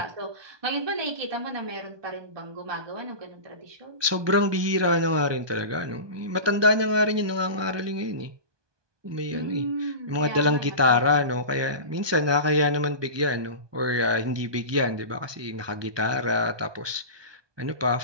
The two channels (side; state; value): left; late; 1.2 ms